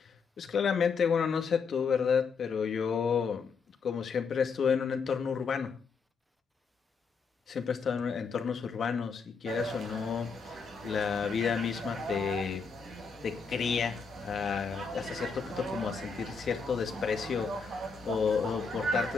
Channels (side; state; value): right; quieter; 5.3 dB